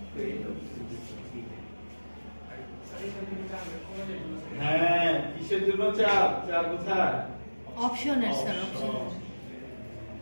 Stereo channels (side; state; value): both; inverted; correlation -1.00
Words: হ্যাঁ কিসের জন্য চাপ চাপ কোথায় অপশনের স্যার অপশন